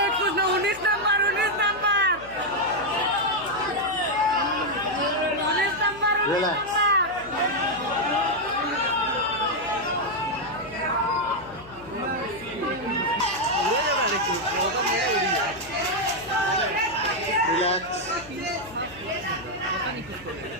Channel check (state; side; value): noise; left; hum, 21 dB below the sound